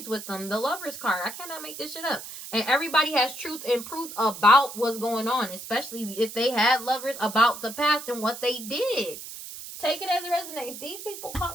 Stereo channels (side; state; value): right; noise; hiss, 11 dB below the sound